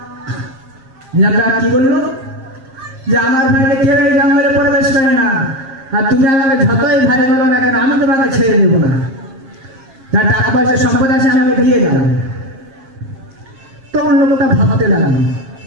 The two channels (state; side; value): late; left; 7.5 ms